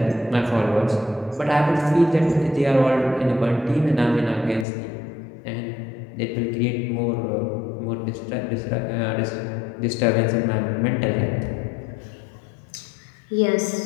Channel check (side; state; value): right; drops out; at 4.7 s